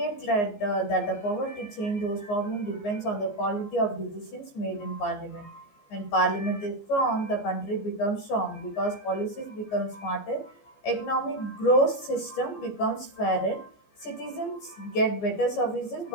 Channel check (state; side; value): late; right; 14 ms